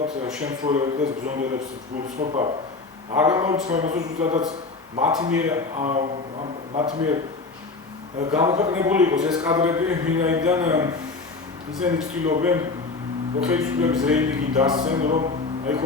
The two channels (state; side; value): quieter; right; 4.0 dB